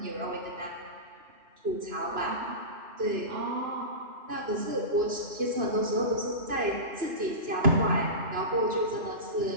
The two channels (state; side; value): late; left; 2.9 ms